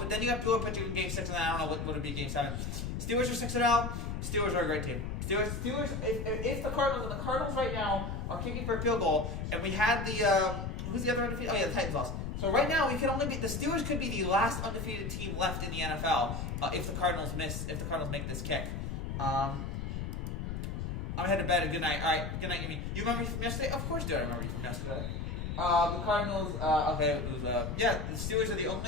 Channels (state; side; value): noise; left; rumble, 4 dB below the sound